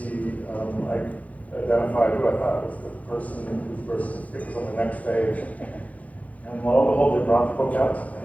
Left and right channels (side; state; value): right; late; 0.069 ms